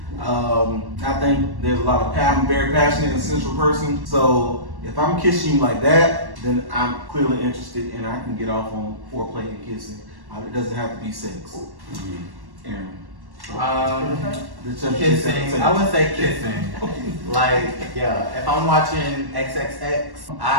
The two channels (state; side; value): late; left; 1.1 ms